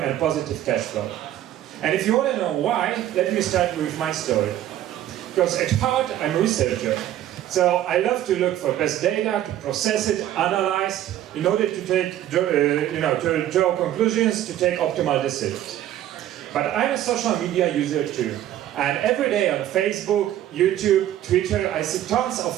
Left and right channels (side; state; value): left; quieter; 12.5 dB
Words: positive cash flow. And if you want to know why, let me start with my story. Because at heart, I'm a researcher. So I love to look for best data, to process it, analyze, in order to take, to draw conclusions, to take optimal decisions. But I'm a social media user too. And every day on Facebook, YouTube, Twitter, I see tons